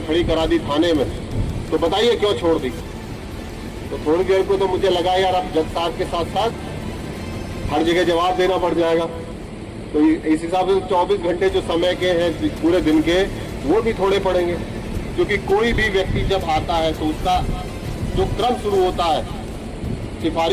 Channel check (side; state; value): both; identical; correlation 1.00